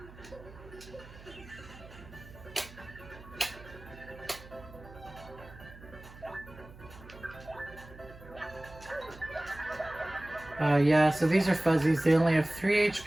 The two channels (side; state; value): right; noise; hum, 19 dB below the sound